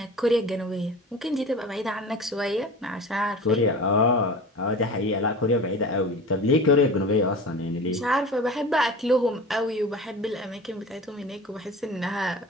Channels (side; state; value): both; normal; correlation 0.35